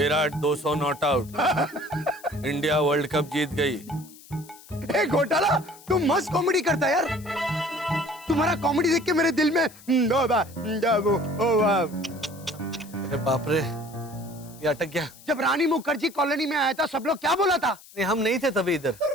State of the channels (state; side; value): noise; left; hiss, 21 dB below the sound